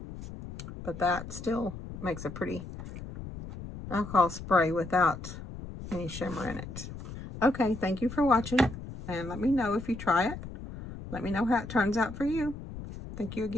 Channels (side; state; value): left; noise; rumble, 11 dB below the sound